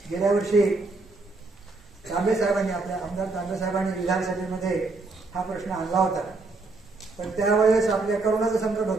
गेल्या वर्षी तांबे साहेबांनी, आपल्या आमदार तांबे साहेबांनी विधानसभेमध्ये हा प्रश्न आणला होता, पण त्यावेळेस आपल्या करोनाचं संकट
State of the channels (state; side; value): quieter; left; 3.6 dB